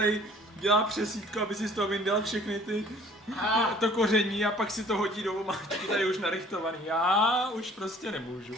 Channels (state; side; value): normal; both; correlation 0.53